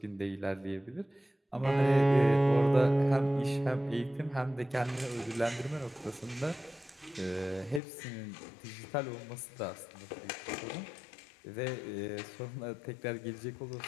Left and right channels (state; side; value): drops out; right; at 7.8 s